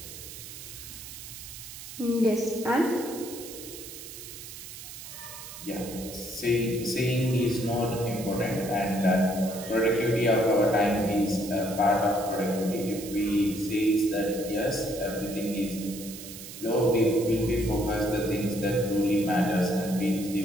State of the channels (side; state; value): right; noise; hiss, 12 dB below the sound